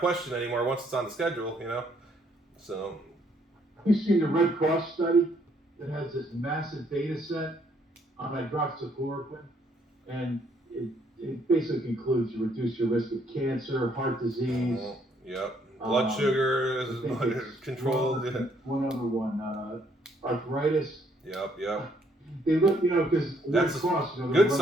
anymore once it's on the schedule, So. You've seen the Red Cross study that has this massive data set on hydroxychloroquine, and it basically concludes you reduce your risk of cancer, heart disease. Yep. Blood sugar is controlled. One other one, arthritis. Yep. They look, because that's Red Cross, good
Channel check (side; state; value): both; normal; correlation 0.68